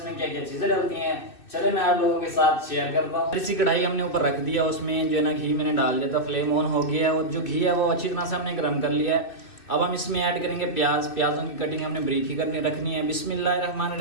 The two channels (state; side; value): late; right; 2.6 ms